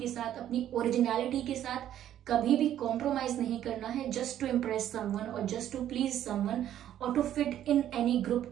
साथ, अपनी ओरिजिनलिटी के साथ कभी भी कॉम्प्रोमाइज नहीं करना है, जस्ट टू इम्प्रेस समवन और जस्ट टू प्लीज समवन और to fit in any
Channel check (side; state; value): left; quieter; 11.3 dB